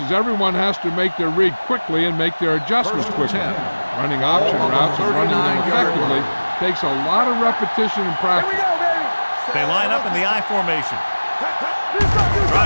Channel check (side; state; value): both; inverted; correlation -1.00